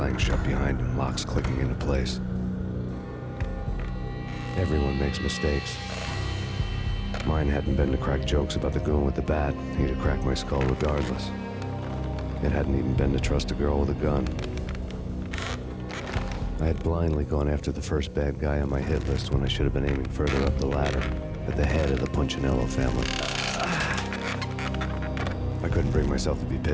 shut behind him, locks clicking into place. Everyone makes mistakes. Mine hadn't been to crack jokes about the goon with the bat. He'd have cracked my skull regardless. It hadn't even been to trust a girl with a gun. I had blindly gone after the first bad guy on my hit list when I should have been aiming further up the ladder, at the head of the Punchinello family. I couldn't bring myself to be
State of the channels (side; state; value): both; identical; correlation 1.00